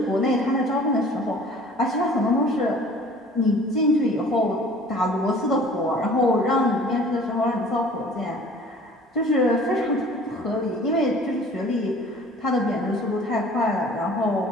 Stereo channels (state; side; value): normal; both; correlation 0.49